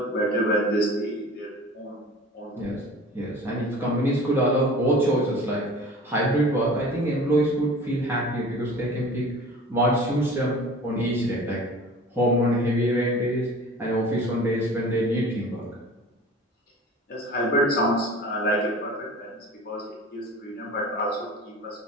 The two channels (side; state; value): both; normal; correlation 0.41